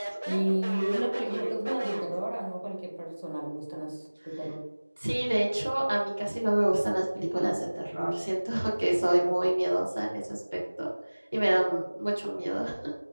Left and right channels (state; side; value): inverted; both; correlation -1.00